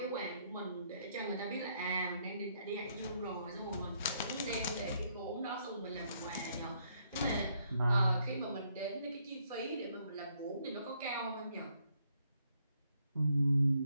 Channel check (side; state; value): both; inverted; correlation -0.72